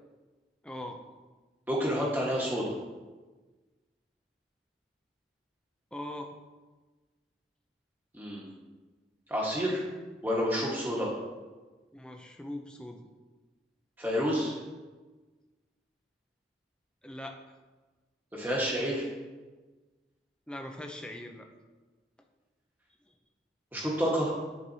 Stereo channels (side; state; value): both; normal; correlation 0.64